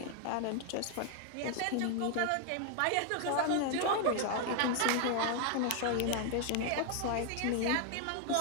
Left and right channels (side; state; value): both; different; correlation 0.00